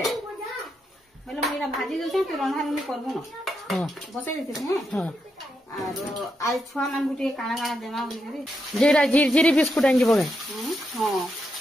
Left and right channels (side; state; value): both; normal; correlation 0.83